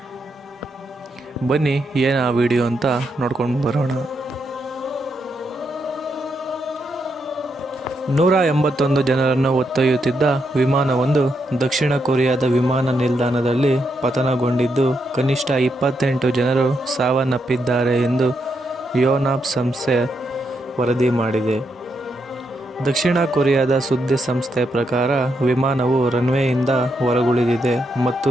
ಬನ್ನಿ ಏನು ಆ ವಿಡಿಯೋ ಅಂತ ನೋಡ್ಕೊಂಡು ಬರೋಣ. 181 ಜನರನ್ನು ಹೊತ್ತೊಯ್ಯುತ್ತಿದ್ದ ವಿಮಾನವೊಂದು ದಕ್ಷಿಣ ಕೊರಿಯಾದ ವಿಮಾನ ನಿಲ್ದಾಣದಲ್ಲಿ ಪತನಗೊಂಡಿದ್ದು ಕನಿಷ್ಠ 28 ಜನರು ಸಾವನ್ನಪ್ಪಿದ್ದಾರೆ ಎಂದು ಯೋನಾಪ್ ಸಂಸ್ಥೆ ವರದಿ ಮಾಡಿದೆ. ದಕ್ಷಿಣ ಕೊರಿಯಾದ ಸುದ್ದಿ ಸಂಸ್ಥೆ ಪ್ರಕಾರ ವಿಮಾನವು ರನ್ವೇಯಿಂದ ಹೊರಗುಳಿದಿದೆ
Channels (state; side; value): normal; both; correlation 0.81